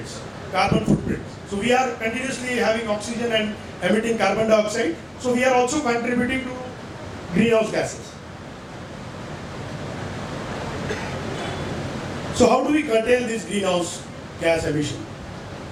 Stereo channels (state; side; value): identical; both; correlation 1.00